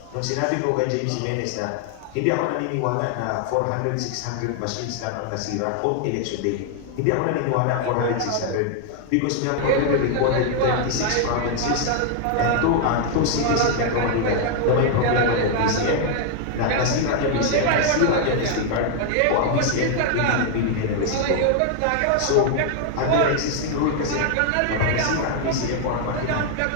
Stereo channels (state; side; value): different; both; correlation 0.00